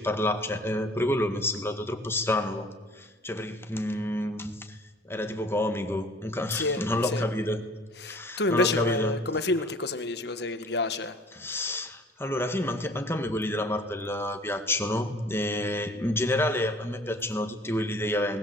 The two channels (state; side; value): normal; both; correlation 0.51